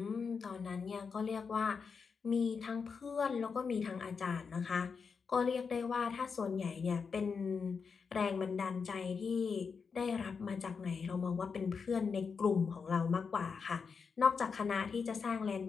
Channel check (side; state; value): right; quieter; 5.6 dB